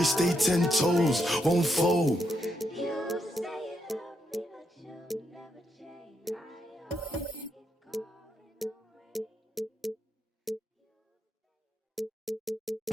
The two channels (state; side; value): normal; both; correlation 0.80